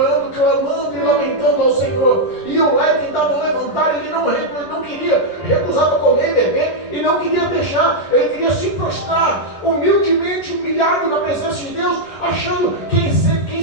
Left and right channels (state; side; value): late; right; 11 ms